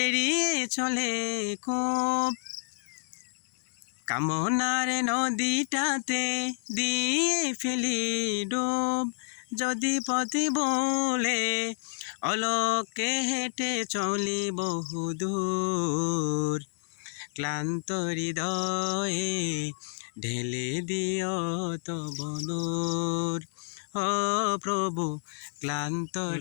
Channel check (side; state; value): right; silent; digital silence